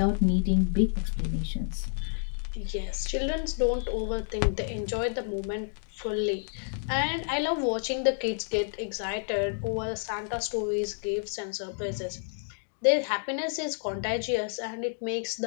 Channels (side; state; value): right; silent; digital silence